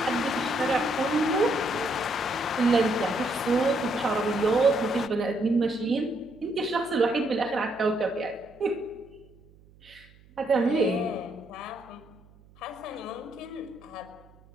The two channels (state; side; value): noise; right; hum, 27 dB below the sound